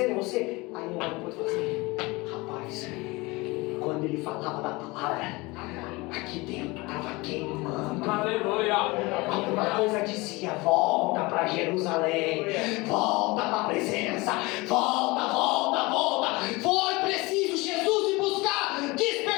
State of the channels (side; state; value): right; quieter; 23.5 dB